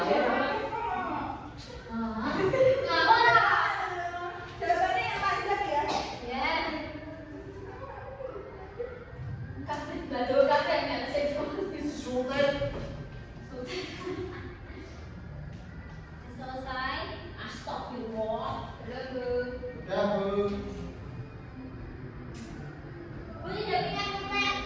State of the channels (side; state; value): both; identical; correlation 1.00